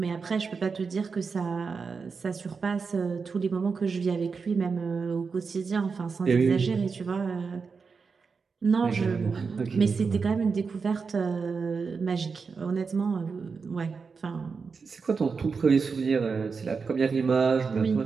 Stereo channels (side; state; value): left; quieter; 5.1 dB